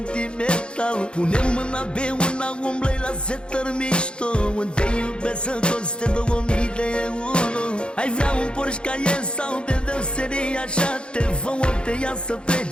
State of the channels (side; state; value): right; late; 0.054 ms